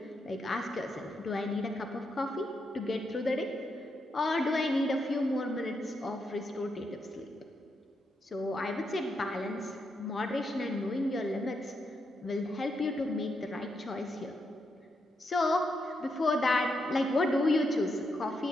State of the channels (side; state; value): both; normal; correlation 0.82